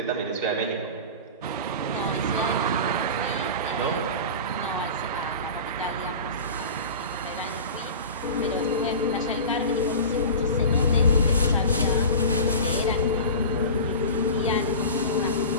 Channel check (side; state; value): both; inverted; correlation -0.32